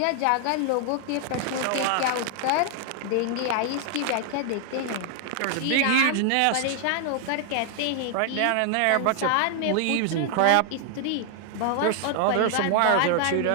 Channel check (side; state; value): both; different; correlation 0.00